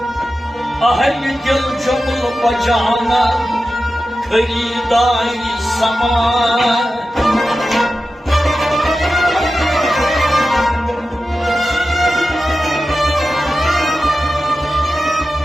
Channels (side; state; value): both; normal; correlation 0.93